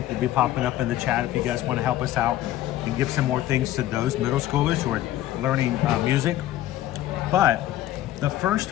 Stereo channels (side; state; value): right; quieter; 14.0 dB